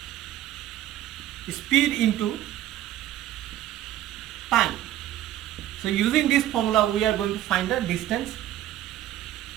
speed into time. So using this formula, we are going to find the distance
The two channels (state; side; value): quieter; left; 13.0 dB